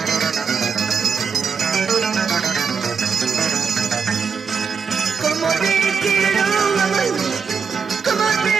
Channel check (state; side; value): quieter; left; 6.0 dB